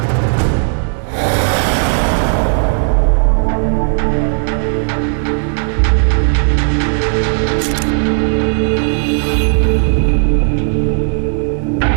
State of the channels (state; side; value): silent; left; 60 dB below the other